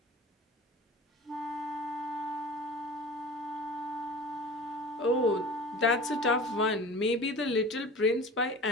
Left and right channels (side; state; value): both; normal; correlation 0.38